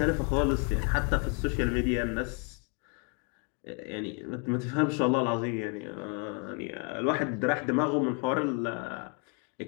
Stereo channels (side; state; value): right; quieter; 36.3 dB